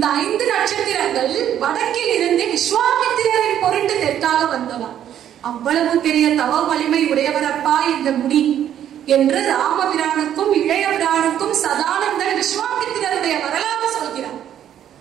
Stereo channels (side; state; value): left; quieter; 10.5 dB